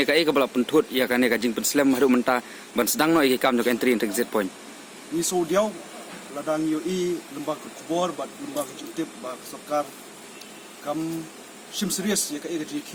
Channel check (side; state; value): both; identical; correlation 1.00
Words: ka ai ka bala pentut ya kane kajing Peslam haru menta ban sedang no ikam jong entry exit point. Ni so diau ladang UI lembah kubor bat lembah jutip ba Sorkar kam sim serius ya ka ai kajing